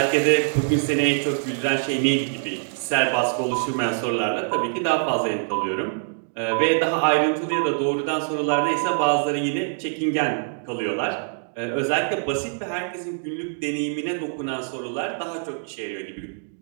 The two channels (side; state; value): left; silent; digital silence